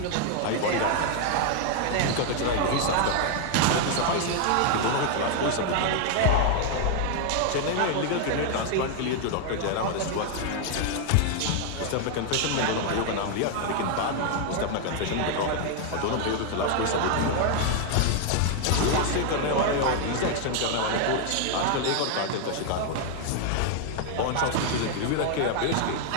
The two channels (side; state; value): both; different; correlation 0.00